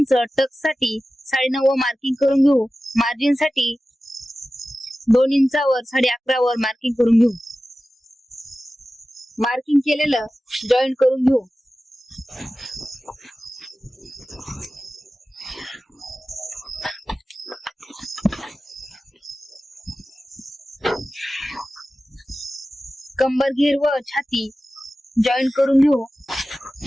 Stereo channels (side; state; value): both; normal; correlation 0.95